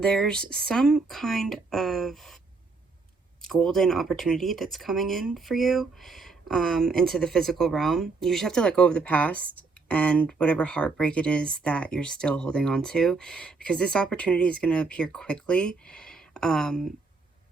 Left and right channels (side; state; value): left; quieter; 4.2 dB